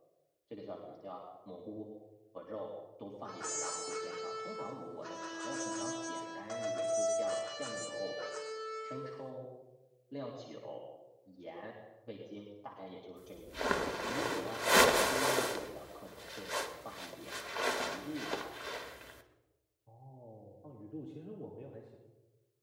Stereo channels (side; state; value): both; identical; correlation 1.00